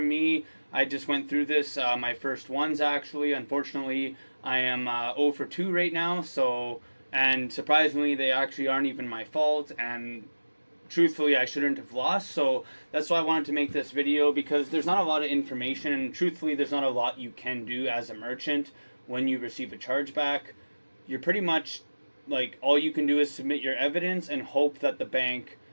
me. I just went through this, my first ones actually. Unfortunately, I am 0 for 2 right now, and surprisingly they actually aren't even my fault, and truthfully I shouldn't have lost. So that's why I wanted to make this video, because there's not a lot of information, and truthfully there's not a lot you can do as a merchant when you receive a chargeback. You're pretty much like, all you can do is submit your evidence and hope that the bank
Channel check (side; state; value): both; inverted; correlation -1.00